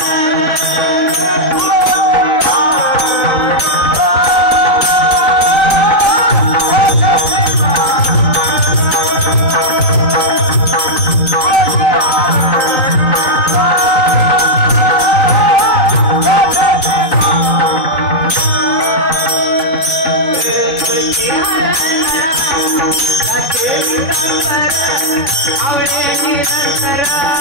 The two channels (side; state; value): right; late; 4.0 ms